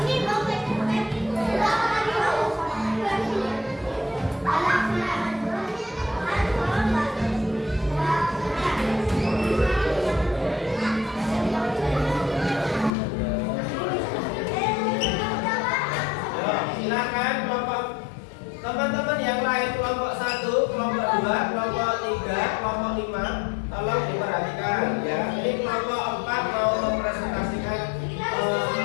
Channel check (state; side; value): drops out; right; at 12.9 s